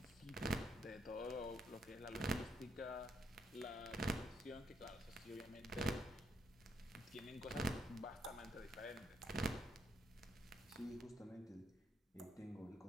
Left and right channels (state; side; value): normal; both; correlation 0.75